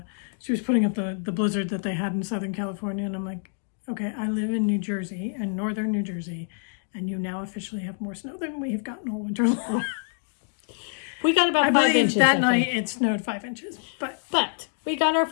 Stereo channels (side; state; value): right; silent; digital silence